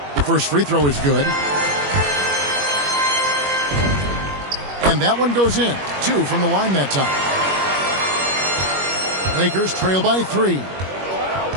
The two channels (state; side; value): late; left; 21 ms